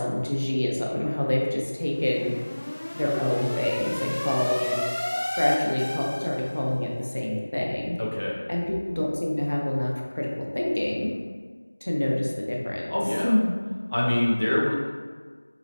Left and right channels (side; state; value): both; inverted; correlation -1.00